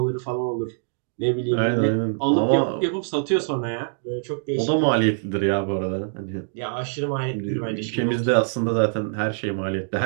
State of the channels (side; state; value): left; silent; digital silence